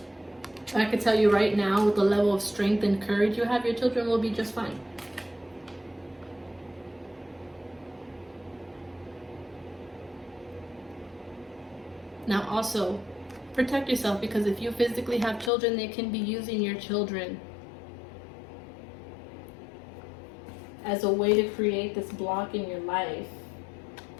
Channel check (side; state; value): right; drops out; at 15.5 s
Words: I can tell you right now, with the level of strength and courage you have, your children will be just fine. Now also, protect yourself, because if you physically have children, they can be using your children as a way to create this block in your life,